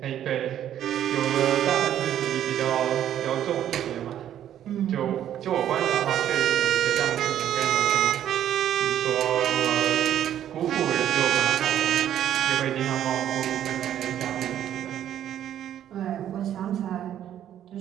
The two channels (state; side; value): quieter; left; 10.9 dB